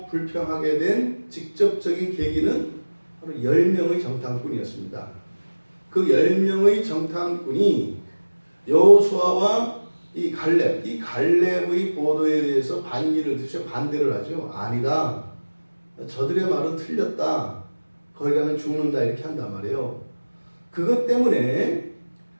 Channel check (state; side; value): inverted; both; correlation -1.00